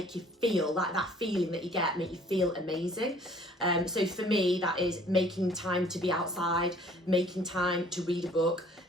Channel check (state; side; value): normal; both; correlation 0.55